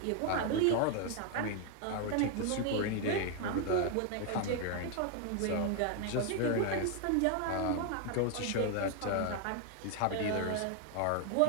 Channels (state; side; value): different; both; correlation 0.01